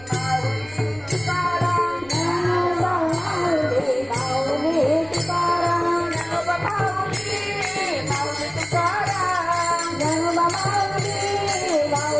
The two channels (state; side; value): noise; right; rumble, 24 dB below the sound